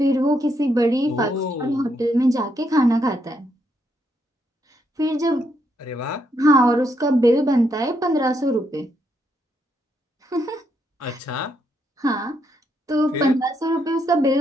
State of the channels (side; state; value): both; normal; correlation 0.77